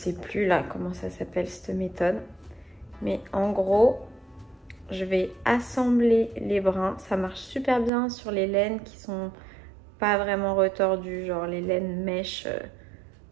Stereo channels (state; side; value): drops out; left; at 7.9 s